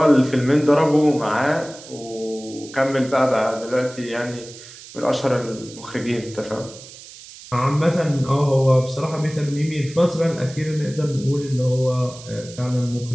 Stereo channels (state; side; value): noise; right; hiss, 17 dB below the sound